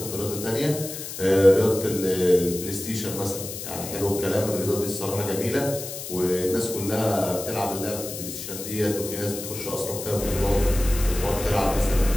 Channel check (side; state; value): left; noise; hiss, 8 dB below the sound